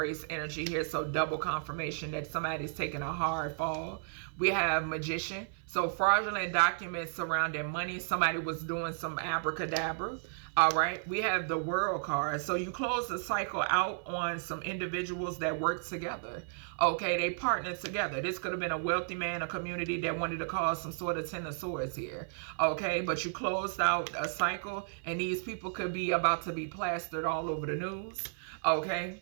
energy here. So double confirmation that somebody's taking a hard fall. We have magician. So fraudulent documents surrounding money. Somebody was doing some abracadabra. All right. We have the world card. So you close the cycle out on some individuals that work together. Okay. They partnered together. This could have been a wealthy man, a community that wanted to cause some sort of 10 of swords here. Okay. But you closed out a cycle and these people could be about to be plastered all over the news.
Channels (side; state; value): left; silent; 56 dB below the other